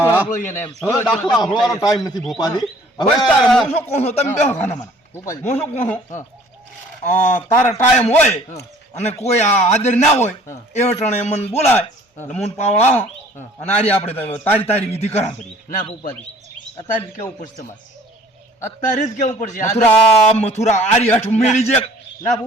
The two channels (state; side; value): normal; both; correlation 0.54